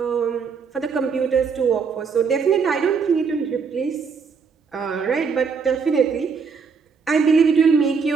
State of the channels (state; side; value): quieter; left; 5.6 dB